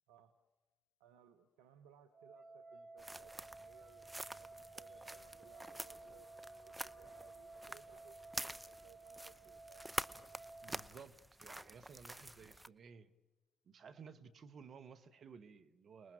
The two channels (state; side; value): normal; both; correlation 0.96